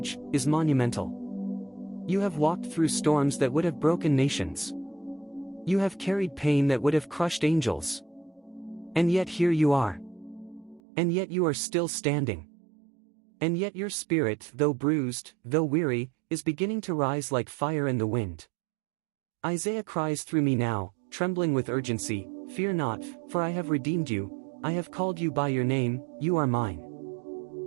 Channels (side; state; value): left; drops out; at 10.8 s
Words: is monumental. You have walked through storms that would have broken nations. You have carried pain that would have crushed angels. And yet here you are. And yet you are still standing. And yet your spirit, though bruised, though weary, is beginning to rise like fire in the wind. Isaiah cries through me now, trembling with urgency, "Fear not, for I have redeemed you, I have called you by your name, you are mine."